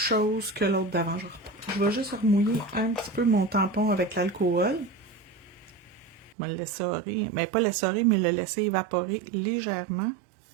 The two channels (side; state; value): left; drops out; at 6.4 s